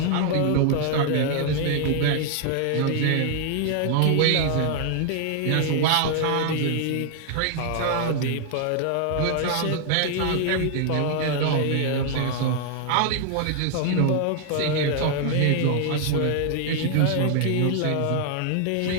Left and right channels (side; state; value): both; different; correlation 0.00